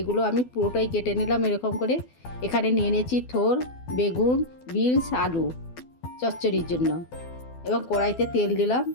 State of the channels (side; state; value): right; late; 12 ms